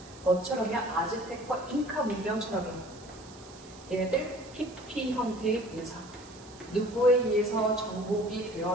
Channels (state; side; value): noise; right; hiss, 21 dB below the sound